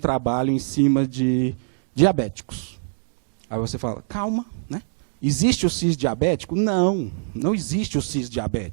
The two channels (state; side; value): silent; left; digital silence